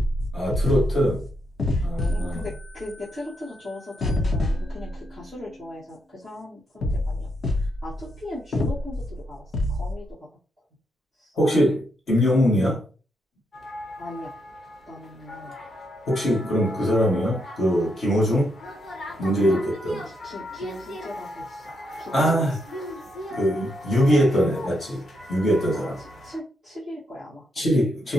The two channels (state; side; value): normal; both; correlation 0.80